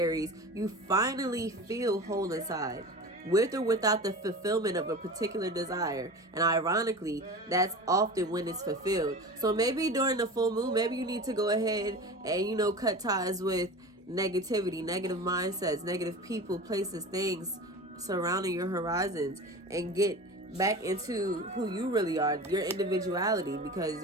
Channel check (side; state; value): both; normal; correlation 0.33